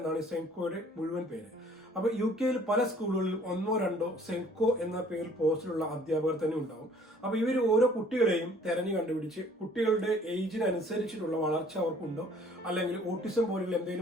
സെൻകോയുടെ മുഴുവൻ പേര്. അപ്പൊ യു കെയിൽ പല സ്കൂളുകളിലും ഒന്നോ രണ്ടോ സെൻകോ എന്ന പേരിൽ പോസ്റ്റിലുള്ള അധ്യാപകർ തന്നെ ഉണ്ടാവും. അപ്പൊ ഇവർ ഓരോ കുട്ടികളെയും തെരഞ്ഞു കണ്ടുപിടിച്ച് കുട്ടികളുടെ ഏജിനനുസരിച്ചിട്ടുള്ള വളർച്ച അവർക്കുണ്ടോ, അല്ലെങ്കിൽ ഓട്ടിസം പോലുള്ള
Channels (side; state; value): both; normal; correlation 0.56